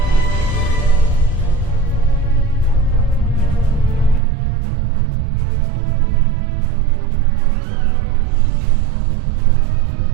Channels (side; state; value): left; drops out; at 4.2 s